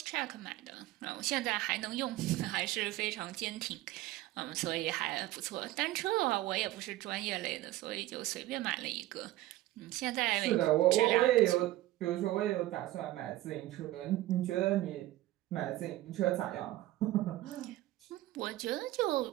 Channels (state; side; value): quieter; left; 16.2 dB